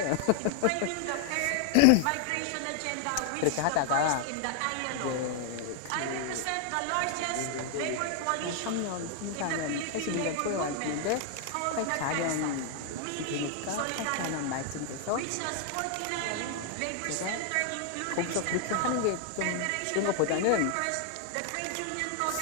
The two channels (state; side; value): different; both; correlation 0.00